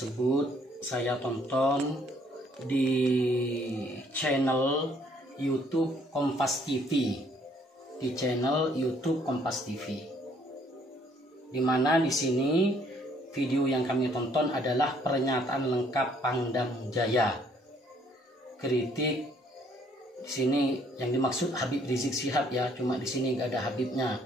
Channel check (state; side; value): normal; both; correlation 0.64